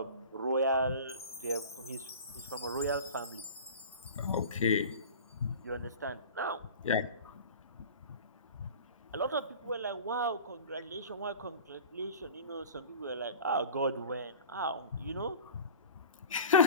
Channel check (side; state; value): both; inverted; correlation -0.39